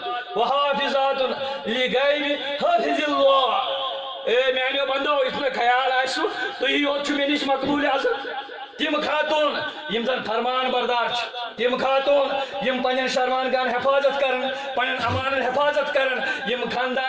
وحافظات لغیب حافظ اللہ اے میانیو بندو اس میں خیال آسو تو یہ ہوت چھو میں نش مقبول عزت تم خاتون یم زن فرمان بردار تم خاتون یم پنن شرمان گان حفاظت کرن پنن امان حفاظت کرن یم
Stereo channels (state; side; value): identical; both; correlation 1.00